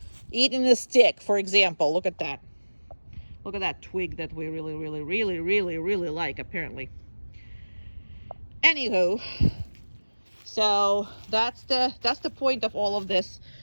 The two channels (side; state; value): both; inverted; correlation -1.00